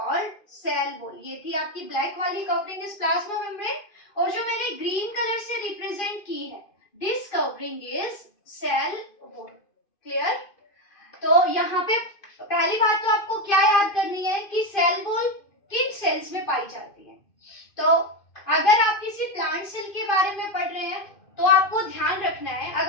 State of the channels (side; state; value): right; late; 2.5 ms